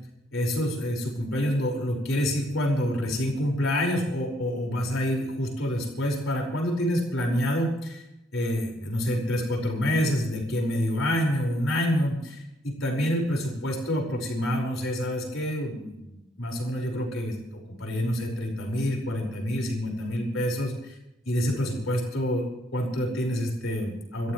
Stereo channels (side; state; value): both; normal; correlation 0.70